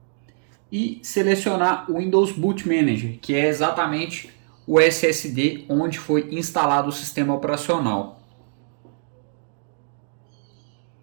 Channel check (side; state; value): left; silent; digital silence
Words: e selecionar o Windows Boot Manager, que é exatamente o SSD onde foi instalado o sistema operacional.